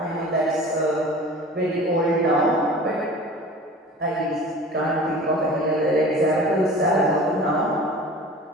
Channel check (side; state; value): both; normal; correlation 0.41